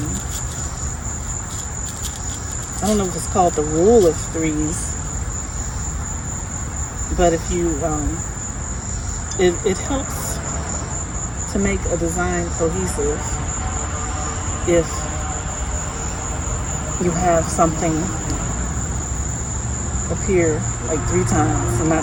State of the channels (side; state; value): both; identical; correlation 1.00